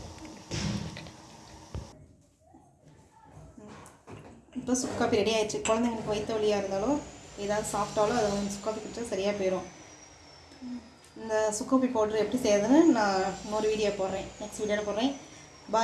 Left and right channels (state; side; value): identical; both; correlation 1.00